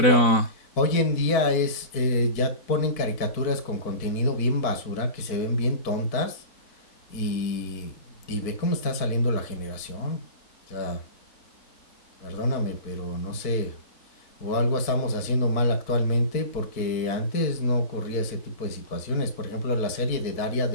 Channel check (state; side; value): late; right; 4.5 ms